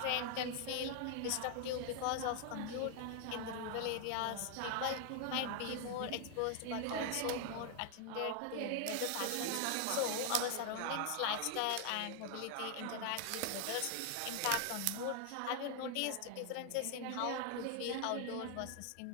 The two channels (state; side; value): different; both; correlation 0.00